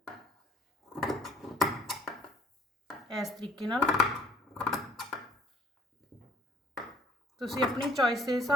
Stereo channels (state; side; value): normal; both; correlation 0.57